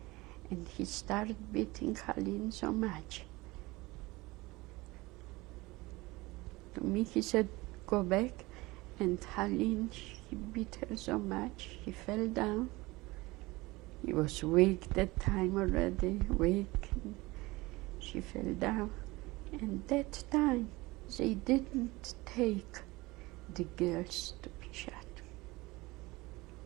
and he started beating Haline so much. To me he said, go back, and Haline, he beat her so much, he fell down. He was weak that time already, weak. She fell down, and that time they didn't take the girls to be shot.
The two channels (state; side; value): quieter; left; 21.6 dB